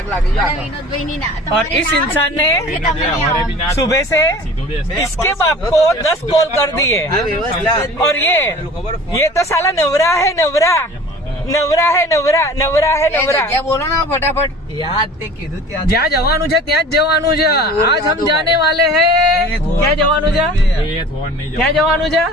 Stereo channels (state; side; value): normal; both; correlation 0.43